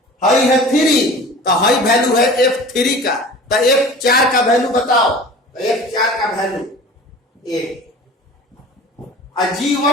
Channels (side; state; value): both; normal; correlation 0.40